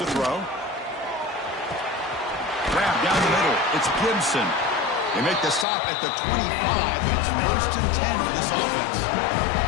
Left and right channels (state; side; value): drops out; right; at 5.7 s